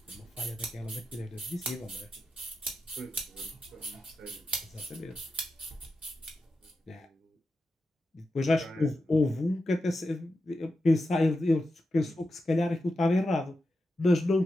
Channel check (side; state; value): both; normal; correlation 0.89